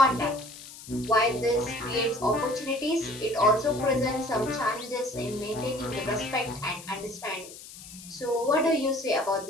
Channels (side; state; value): left; noise; hiss, 16 dB below the sound